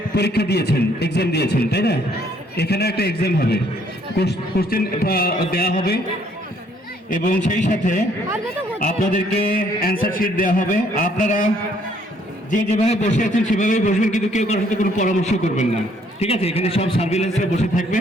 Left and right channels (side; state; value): both; normal; correlation 0.65